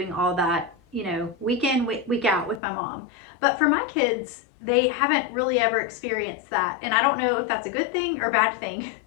all that, week in, week out with my mom. But for my kids, they haven't really ever experienced that. And I don't know if that's a good thing or bad thing.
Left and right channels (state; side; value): drops out; right; at 2.6 s